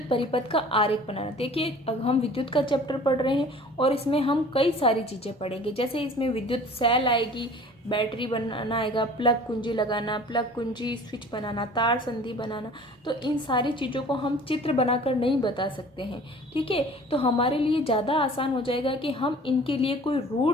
परिपथ का आरेख बनाना। देखिए अब हम विद्युत का चैप्टर पढ़ रहे हैं और इसमें हम कई सारी चीज़ें पढ़ेंगे। जैसे इसमें विद्युत सेल आएगी, बैटरी बनाना आएगा, प्लग कुंजी लगाना, प्लग कुंजी स्विच बनाना, तार संधि बनाना। तो इन सारी चीज़ों को हम चित्र बनाकर नहीं बता सकते हैं, ठीक है। तो हमारे लिए ज़्यादा आसान हो जाएगा कि हम इनके लिए कोई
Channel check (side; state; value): both; normal; correlation 0.46